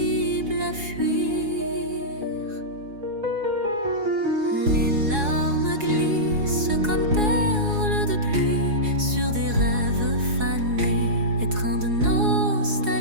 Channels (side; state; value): left; late; 4.8 ms